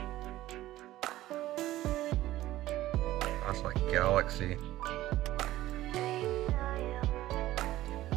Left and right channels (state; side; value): quieter; left; 15.3 dB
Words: That's like Galaxy.